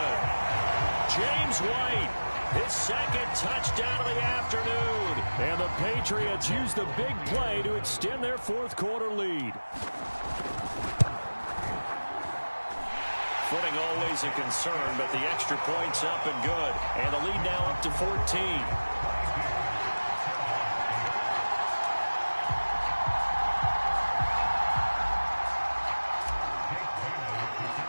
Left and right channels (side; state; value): both; inverted; correlation -1.00